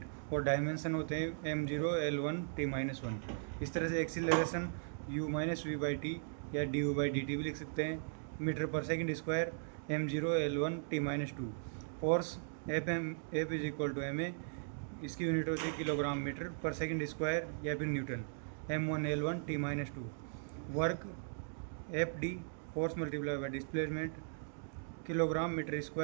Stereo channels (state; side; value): silent; left; digital silence